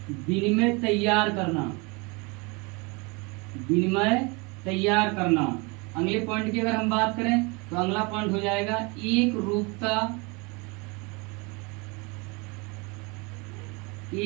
विनिमय तैयार करना। अगले पॉइंट की अगर हम बात करें तो अगला पॉइंट हो जाएगा एक रूपता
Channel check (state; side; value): quieter; left; 28.5 dB